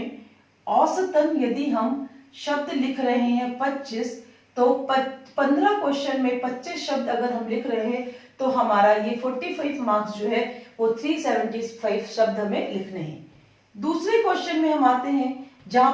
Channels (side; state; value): both; identical; correlation 1.00